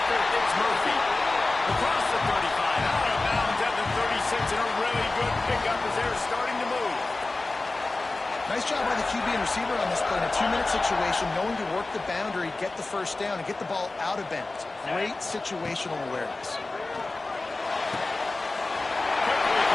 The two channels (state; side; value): quieter; right; 3.2 dB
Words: It's Murphy. Across the 35. Out of bounds at the 36. And a really good pickup as they're starting to move. Nice job by the QB and receiver on this play. In a 2-minute situation, knowing to work the boundary, get the first down, and get the ball out of bounds. Great situational awareness.